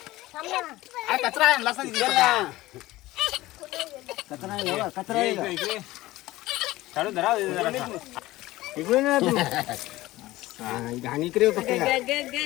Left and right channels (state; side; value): quieter; right; 17.7 dB